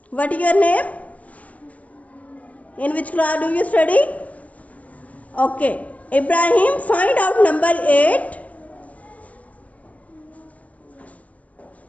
What is your name? In which class do you study? Okay. Ibrahim, find out number 8.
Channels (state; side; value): late; right; 0.069 ms